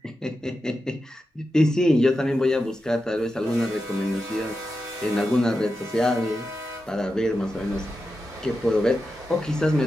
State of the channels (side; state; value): both; normal; correlation 0.90